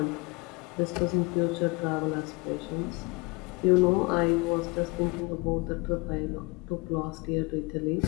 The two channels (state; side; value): quieter; right; 26.0 dB